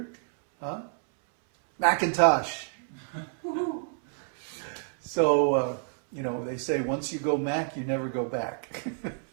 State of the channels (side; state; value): left; silent; 59 dB below the other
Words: Macintosh. So, they say once you go Mac, you never go back.